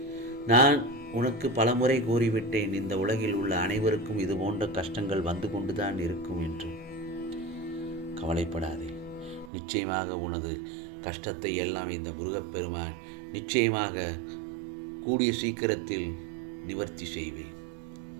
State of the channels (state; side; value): drops out; left; at 9.5 s